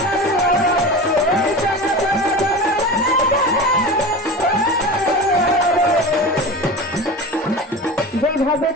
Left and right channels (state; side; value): normal; both; correlation 0.31